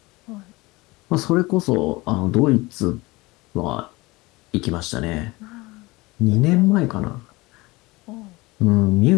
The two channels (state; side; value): quieter; right; 22.3 dB